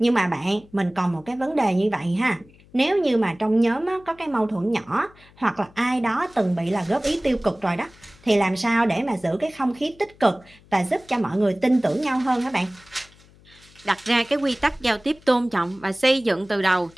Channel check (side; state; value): left; noise; hum, 27 dB below the sound